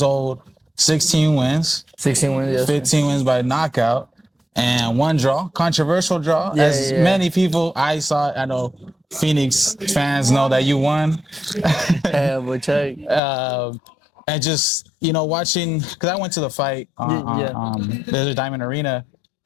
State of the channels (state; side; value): drops out; right; at 13.2 s